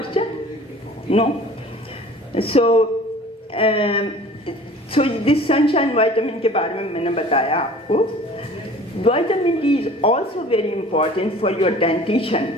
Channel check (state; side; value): normal; both; correlation 0.46